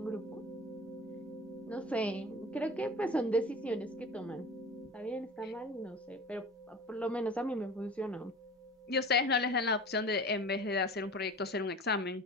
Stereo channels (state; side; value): normal; both; correlation 0.38